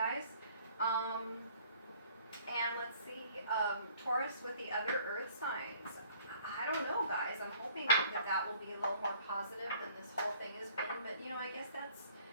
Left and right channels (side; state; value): both; inverted; correlation -0.56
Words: And let's see, Taurus with the other earth signs. I don't know, guys. I'm hoping that that will be a little more positive than this whole thing has been. But, you know, I guess that's,